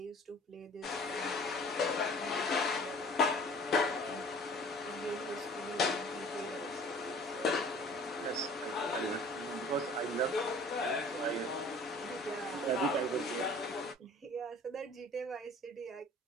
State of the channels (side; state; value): both; normal; correlation 0.48